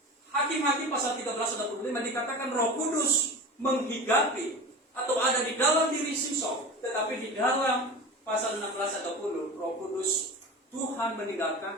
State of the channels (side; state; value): both; normal; correlation 0.31